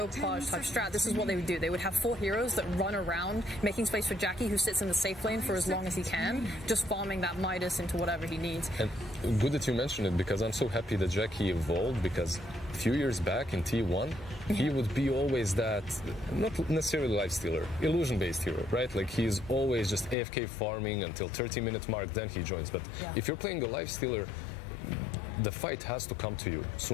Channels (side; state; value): right; drops out; at 20.2 s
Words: type strat. This is what they would do. They would have 4 heroes that run around, making space for Jackie, who sits in the safe lane for as long as he can, just farming that Midas into whatever he needs. And good that you mentioned it, because I'm so happy that Jackie evolved, because a few years back in T1, he would be always that, not necessarily lifestealer, illusion-based hero, right? Like he's always just AFK farming until 30-minute mark, then he joins. But if you're playing a lifestealer, the fight has to come to you